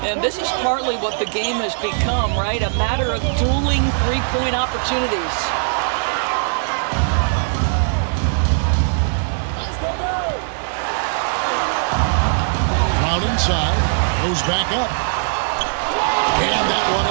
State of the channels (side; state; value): left; silent; digital silence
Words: And this is partly what the game has become, right? A matter of dueling three-point opportunities. Brown inside, goes back up. And that one